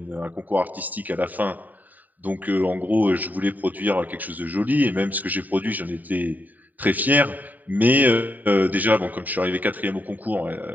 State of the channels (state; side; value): late; left; 0.083 ms